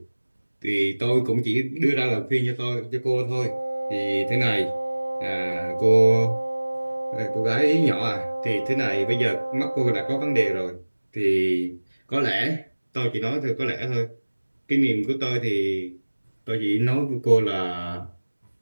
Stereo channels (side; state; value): both; inverted; correlation -1.00